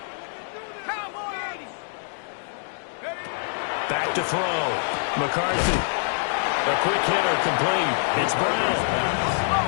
Back to throw. McCarthy. A quick hitter complete. It's Brown.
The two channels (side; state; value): right; silent; digital silence